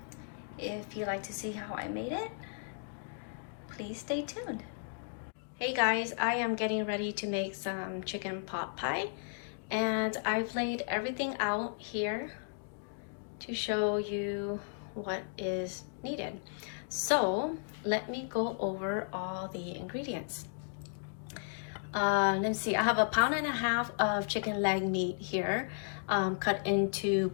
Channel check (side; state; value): right; silent; digital silence